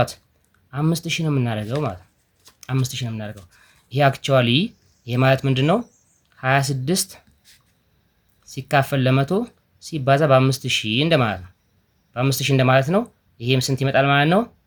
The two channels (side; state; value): both; identical; correlation 1.00